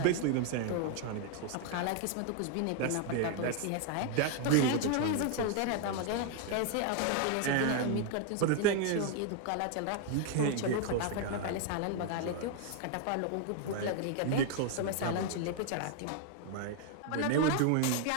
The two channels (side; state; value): both; different; correlation 0.00